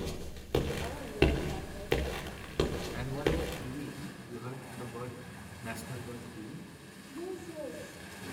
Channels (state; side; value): identical; both; correlation 1.00